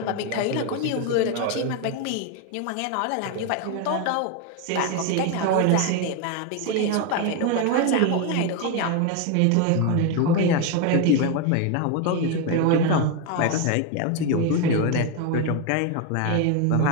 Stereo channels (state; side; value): different; both; correlation 0.02